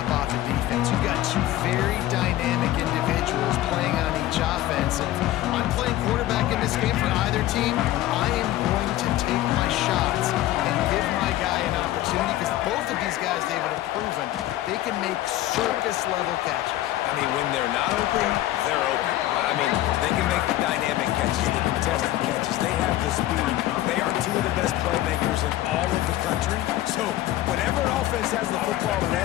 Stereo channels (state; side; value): quieter; right; 14.7 dB